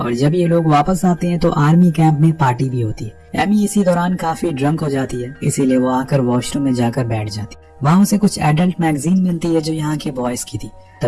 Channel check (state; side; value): identical; both; correlation 1.00